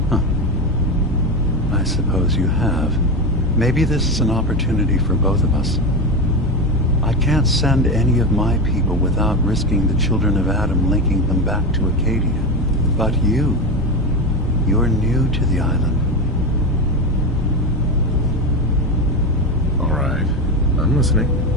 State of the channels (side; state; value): both; normal; correlation 0.18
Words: Huh. I suppose you have. Maybe this is an opportunity for both of us. I can't send any of my people without risking the children of Adam linking them back to Acadia. But you're new to the island. All right. I'm listening.